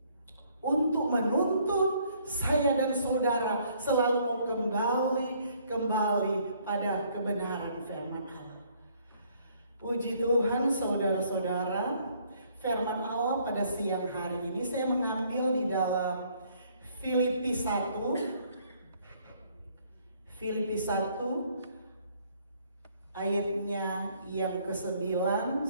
untuk menuntun saya dan saudara selalu mau kembali pada kebenaran firman Allah. Puji Tuhan saudara-saudara, firman Allah pada siang hari ini saya mengambil di dalam Filipi 1 ayatnya yang ke-9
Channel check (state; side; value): inverted; both; correlation -0.64